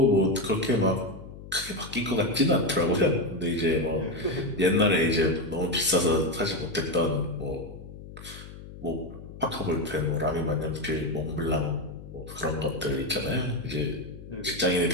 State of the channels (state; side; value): noise; left; hum, 15 dB below the sound